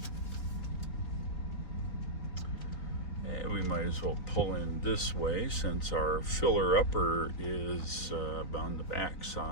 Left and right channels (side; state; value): right; late; 3.9 ms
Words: We might as well pull in this way since our filler upper is on the back